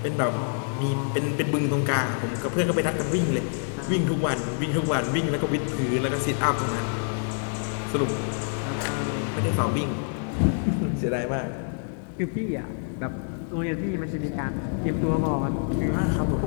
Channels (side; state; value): right; silent; digital silence